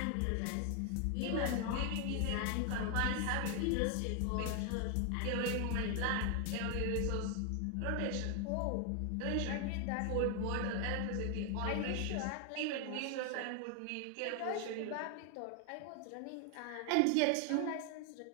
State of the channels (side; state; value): both; different; correlation 0.00